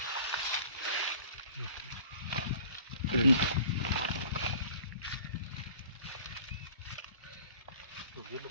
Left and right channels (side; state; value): both; inverted; correlation -0.48